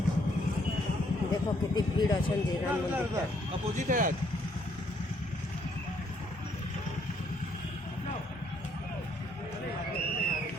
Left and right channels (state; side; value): normal; both; correlation 0.68